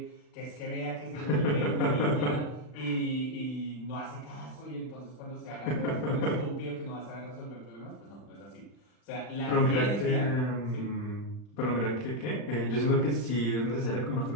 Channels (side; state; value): right; late; 39 ms